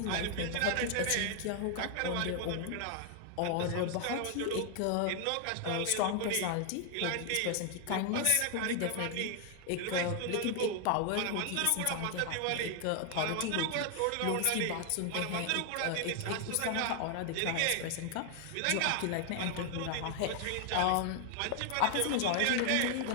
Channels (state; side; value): different; both; correlation 0.00